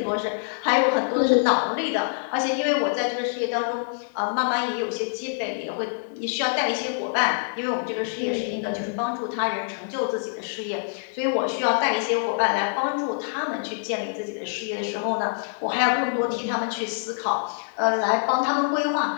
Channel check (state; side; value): silent; right; digital silence